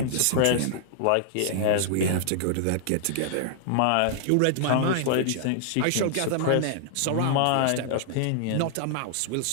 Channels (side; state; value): both; different; correlation -0.01